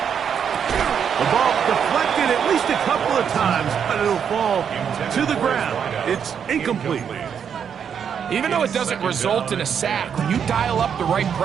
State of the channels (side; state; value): left; quieter; 7.7 dB